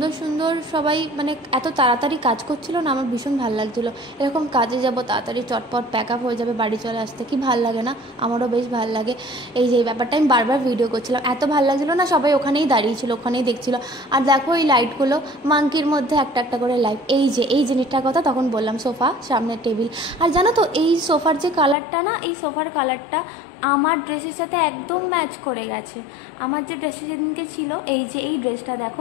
সুন্দর সবাই, মানে এত তাড়াতাড়ি কাজ করছিল না, আমার ভীষণ ভালো লাগছিলো। এরকম কাজে যাব, তাড়াতাড়ি চটপট প্যাক আপ হয়ে যাবে, বাড়ি চলে আসতে কি ভাল লাগে না? আমারও বেশ ভালো লাগে। এই যে ব্যাপারটা আমি বারবার ভিডিও করছিলাম, এত ভালো লাগছিলো না, সবাই ওখানেই দাঁড়িয়েছিল, ওখানেই দেখছিল। আর দেখো এই লাইটগুলো, মাঙ্কির মধ্যে একটা একটা করে লাইট। এই জিনিসটার কথা তখন বললাম, সোফা, সামনের টেবিল। আর জানো তো, এই সোফার যে কালারটা না, এই সোফার কালারটা আমার ড্রেসের সাথে একদম ম্যাচ করে গেছে। আমার যে ড্রেসটা সেদিনকে ছিল, এই যে এই ড্রেসটা দেখো,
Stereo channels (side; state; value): right; drops out; at 21.8 s